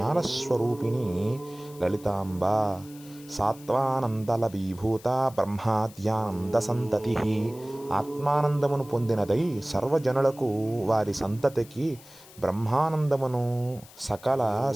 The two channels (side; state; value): left; noise; hiss, 22 dB below the sound